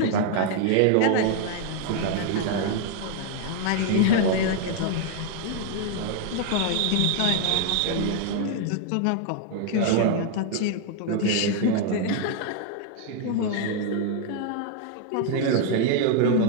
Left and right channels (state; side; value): different; both; correlation 0.00